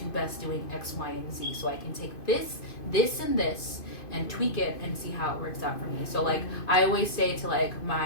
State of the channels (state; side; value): late; right; 2.5 ms